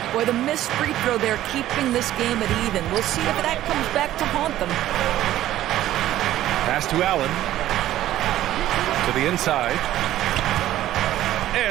Boy, the missed free throw there keeping this game at even. We'll see if that comes back to haunt them. Pass to Allen. To the inside.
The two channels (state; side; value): quieter; left; 13.5 dB